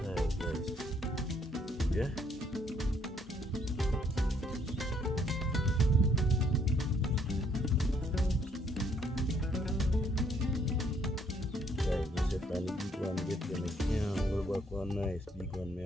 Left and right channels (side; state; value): both; normal; correlation 0.67